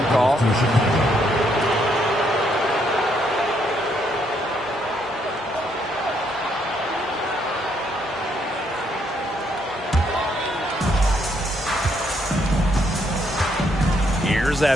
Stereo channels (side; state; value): both; normal; correlation 0.72